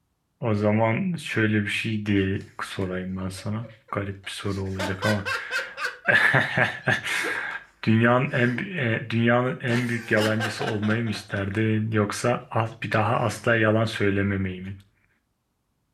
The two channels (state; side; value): identical; both; correlation 1.00